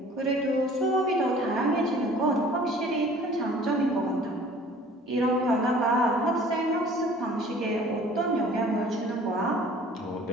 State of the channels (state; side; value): normal; both; correlation 0.50